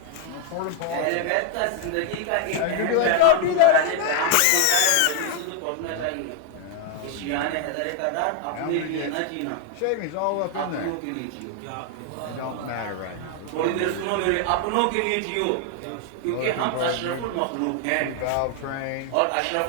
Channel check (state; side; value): different; both; correlation 0.01